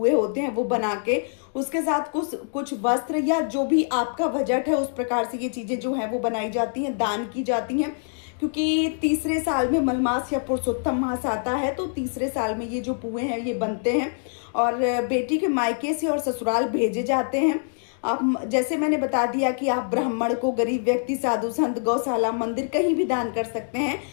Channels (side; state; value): right; silent; 62 dB below the other